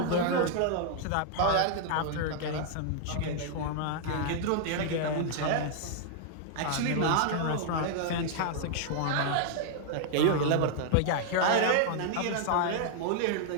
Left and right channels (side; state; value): both; different; correlation 0.00